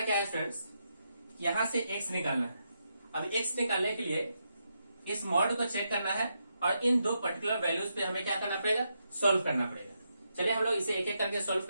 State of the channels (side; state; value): both; inverted; correlation -0.83